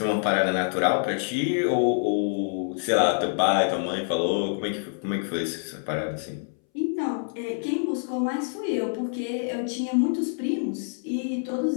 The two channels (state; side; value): silent; right; 61 dB below the other